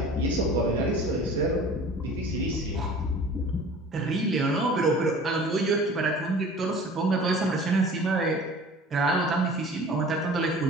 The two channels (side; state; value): both; normal; correlation 0.44